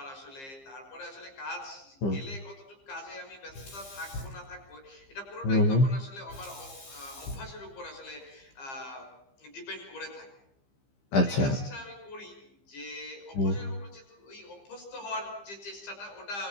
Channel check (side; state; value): right; late; 15 ms